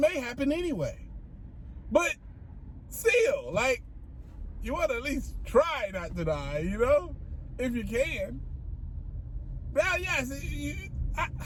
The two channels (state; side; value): identical; both; correlation 1.00